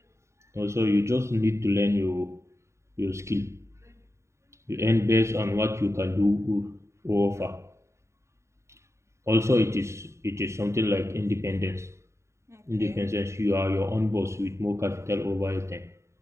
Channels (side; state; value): left; late; 0.14 ms